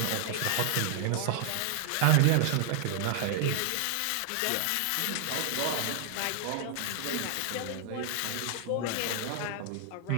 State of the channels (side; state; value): both; different; correlation 0.00